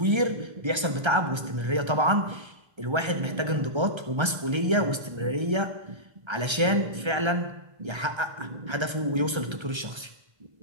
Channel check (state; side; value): late; left; 1.3 ms